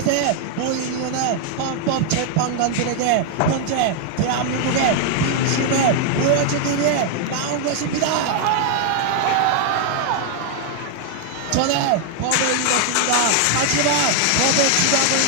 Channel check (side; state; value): both; different; correlation 0.00